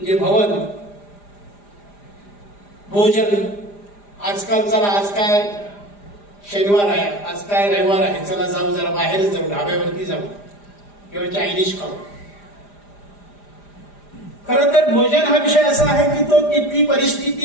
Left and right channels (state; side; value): late; right; 4.9 ms